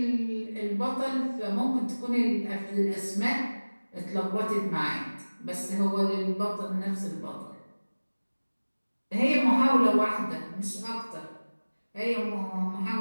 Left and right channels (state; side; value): inverted; both; correlation -1.00